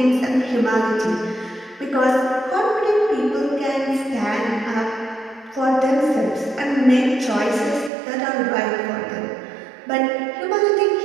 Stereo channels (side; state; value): left; drops out; at 7.9 s